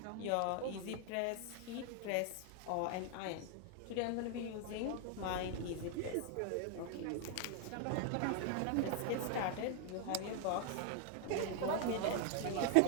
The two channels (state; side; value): different; both; correlation 0.00